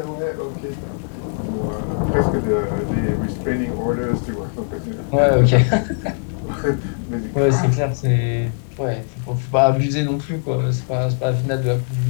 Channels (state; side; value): silent; right; digital silence